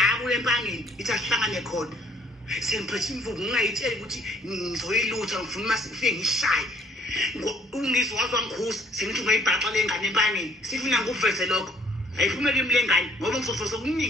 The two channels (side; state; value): both; normal; correlation 0.61